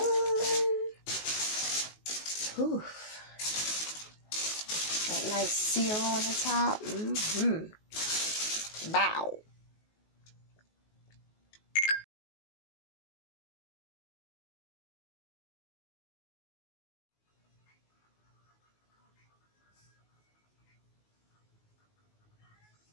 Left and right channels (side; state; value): right; late; 19 ms